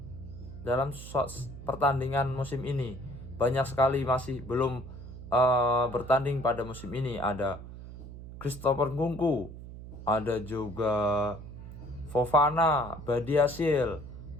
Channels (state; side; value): noise; right; hum, 13 dB below the sound